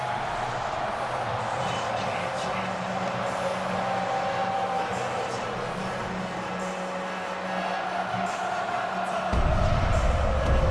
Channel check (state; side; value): identical; both; correlation 1.00